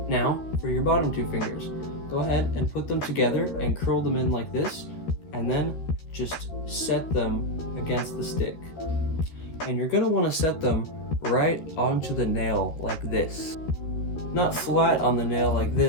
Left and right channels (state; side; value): late; right; 13 ms